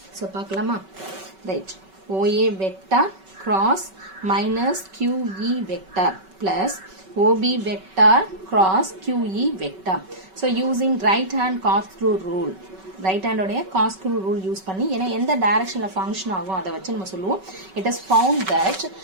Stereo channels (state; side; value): late; left; 5.3 ms